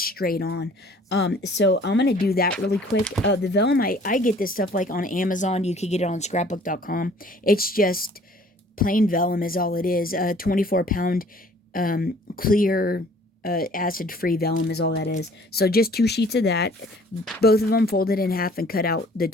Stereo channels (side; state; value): both; normal; correlation 0.54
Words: straight on. So I'm going to do that really quick. The vellum, I get this stuff like on Amazon. You can get it on scrapbook.com. It's just plain vellum is all it is. 24-pound, clear, acid-free vellum is all that is. So just 2 sheets of that, both of them folded in half and cut out the